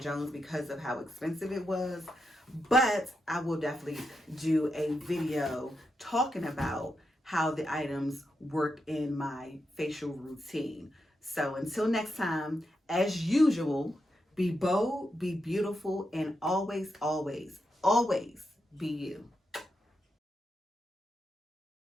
Jones, because of how expensive it was. But I will definitely do a video talking about how the items work in my facial routine. So until next time, as usual, be bold, be beautiful, and always, always, always be you.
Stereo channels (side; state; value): both; normal; correlation 0.85